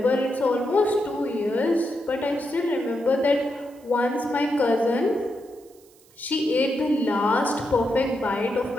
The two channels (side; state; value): right; noise; hiss, 29 dB below the sound